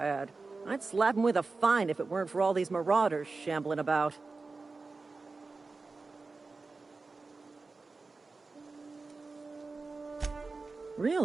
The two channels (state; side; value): quieter; left; 3.9 dB